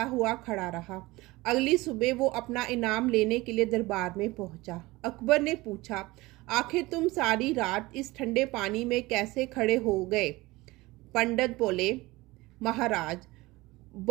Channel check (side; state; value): left; quieter; 20.7 dB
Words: हुआ खड़ा रहा। अगली सुबह वो अपना इनाम लेने के लिए दरबार में पहुंचा। अकबर ने पूछा, आखिर तुम सारी रात इस ठंडे पानी में कैसे खड़े हो गए? पंडित बोले, महाराज,